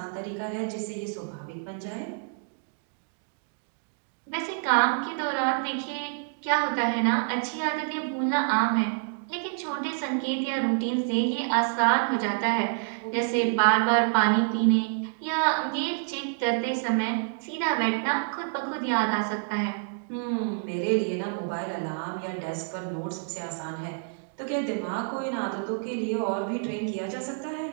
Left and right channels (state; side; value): silent; left; digital silence